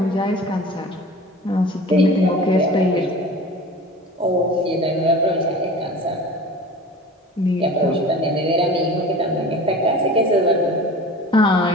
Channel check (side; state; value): both; normal; correlation 0.38